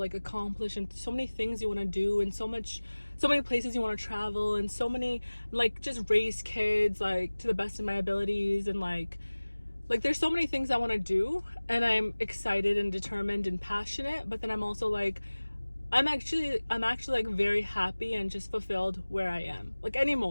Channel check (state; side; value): inverted; both; correlation -1.00